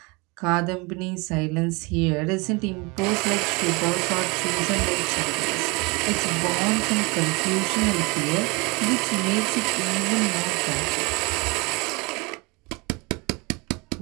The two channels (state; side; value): quieter; left; 27.4 dB